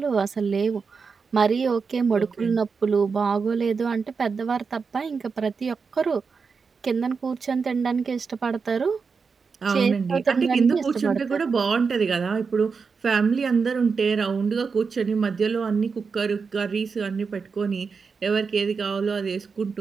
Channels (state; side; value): quieter; left; 5.3 dB